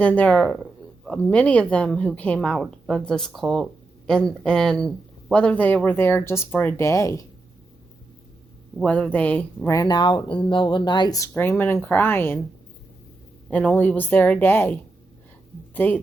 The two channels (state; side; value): quieter; left; 3.3 dB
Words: there are many of them who came out of this cult, and whether they were there just for a day, whether they ran out in the middle of the night screaming and crying and only was there a day,